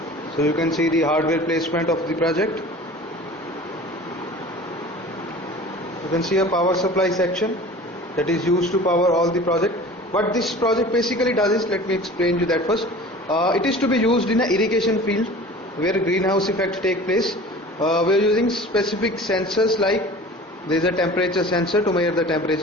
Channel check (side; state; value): both; normal; correlation 0.41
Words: So you can see the hardware placement of the project. You can see a power supply section that is used to power all the project. What this project basically does is, let me explain you that first. It is to be used in an irrigation field where greenhouse effect take place. We are using specific sensors, like there is a temperature sensor to measure the